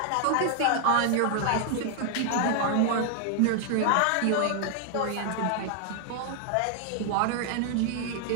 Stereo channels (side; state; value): both; different; correlation 0.00